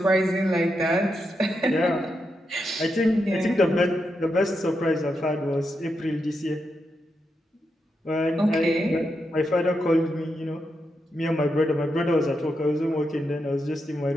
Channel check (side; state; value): both; normal; correlation 0.84